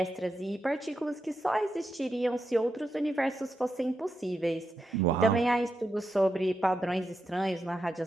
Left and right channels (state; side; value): normal; both; correlation 0.86